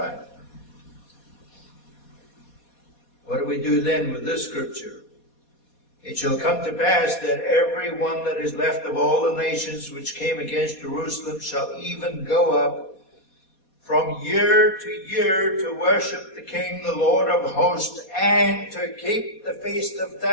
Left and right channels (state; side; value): late; right; 4.2 ms